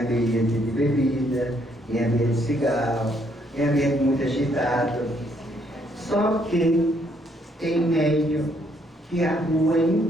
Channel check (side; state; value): both; normal; correlation 0.70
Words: de bebida, em ambiente de cigarro, em ambiente muito agitado. Só que tem médium que a rua